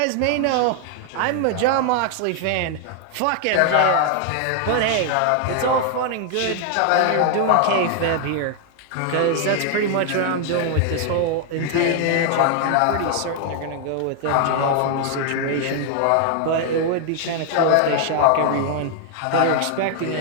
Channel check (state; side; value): different; both; correlation 0.00